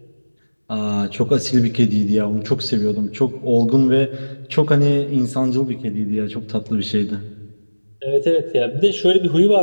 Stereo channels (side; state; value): both; inverted; correlation -1.00